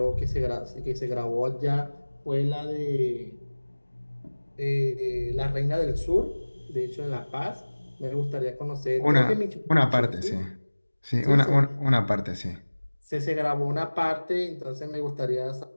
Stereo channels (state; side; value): inverted; both; correlation -1.00